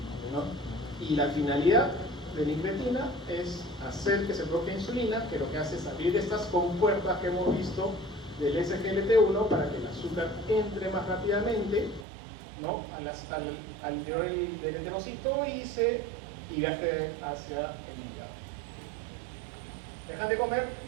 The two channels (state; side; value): drops out; left; at 12.1 s